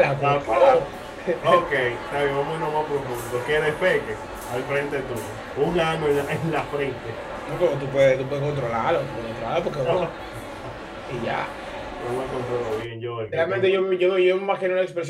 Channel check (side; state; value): both; identical; correlation 1.00